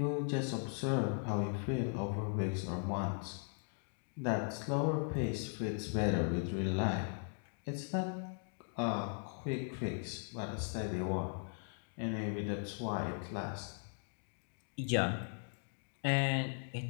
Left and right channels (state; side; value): silent; right; 52 dB below the other